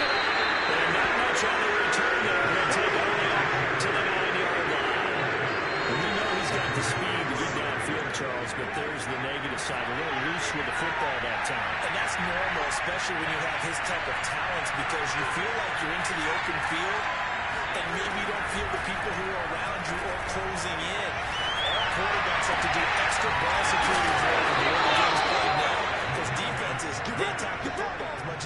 up. And not much on the return there. He'll take it only up to the 9-yard line. And we know he's got the speed to get downfield, Charles, but there's the negative side. A little loose with the football that time. And that's normal, especially when you have his type of talents, because you feel like you're into the open field, and maybe you don't feel the people who are around you or closing in. All quarterbacks have to do extra ball security drill when the early game's played now, because defenses, they attack the football as much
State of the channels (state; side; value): identical; both; correlation 1.00